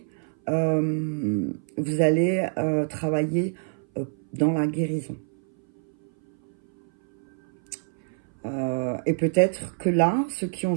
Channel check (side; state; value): left; silent; 58 dB below the other